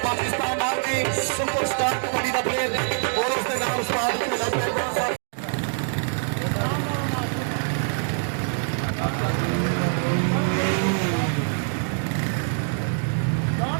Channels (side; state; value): left; silent; 62 dB below the other